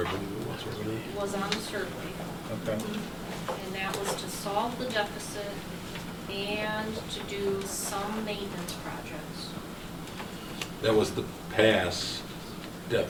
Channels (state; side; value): identical; both; correlation 1.00